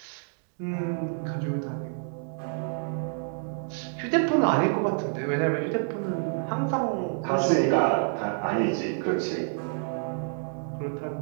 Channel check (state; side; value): silent; left; digital silence